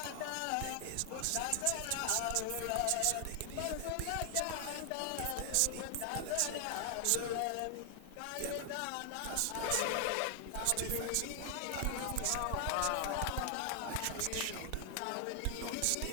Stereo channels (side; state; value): both; different; correlation 0.00